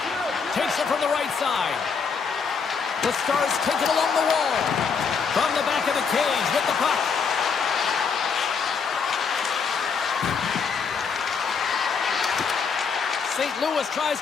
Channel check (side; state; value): right; quieter; 5.8 dB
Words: Takes it from the right side. The Stars take it along the wall. From the back of the cage with the puck. St. Louis tries